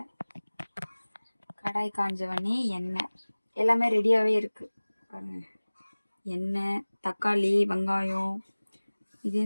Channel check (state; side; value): inverted; both; correlation -1.00